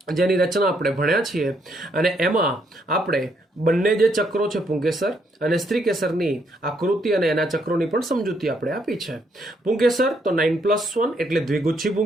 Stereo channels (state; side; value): normal; both; correlation 0.73